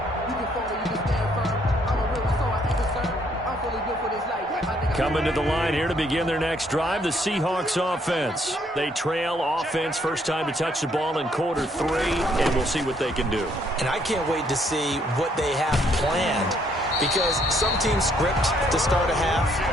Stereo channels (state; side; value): normal; both; correlation 0.68